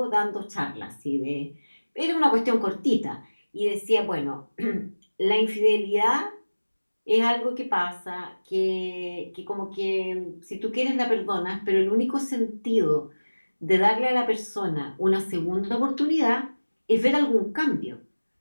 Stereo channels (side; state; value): both; inverted; correlation -1.00